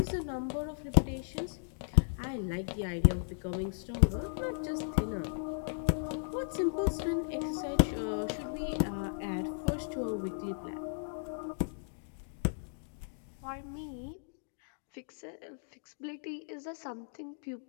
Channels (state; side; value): silent; right; digital silence